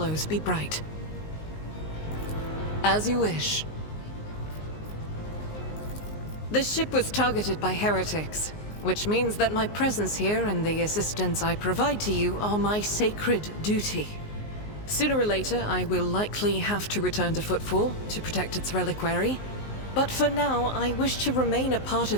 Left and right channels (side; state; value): right; late; 19 ms